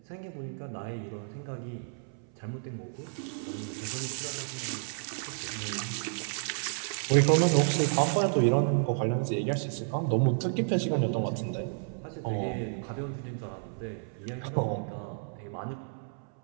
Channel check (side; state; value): left; silent; 57 dB below the other